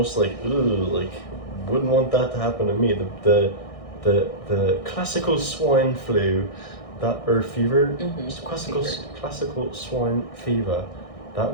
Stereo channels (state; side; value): late; right; 1.6 ms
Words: wouldn't want that to happen to me. The classical swine flu, fever, classical swine fever, that